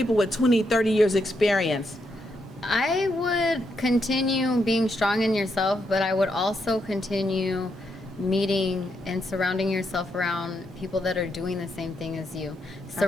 with 20, 30 years experience. I would continue being strong in yourself, but I would also continue meeting and surrounding yourself around people that are doing the same thing as you.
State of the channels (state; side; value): normal; both; correlation 0.80